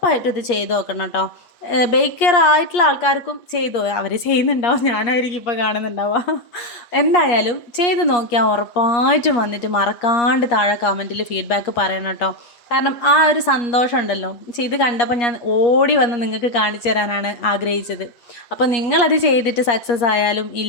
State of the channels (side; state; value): right; late; 8.5 ms